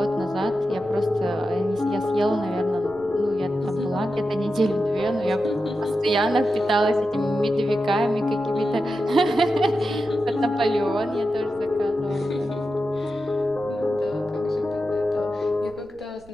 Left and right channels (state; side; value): noise; right; rumble, 27 dB below the sound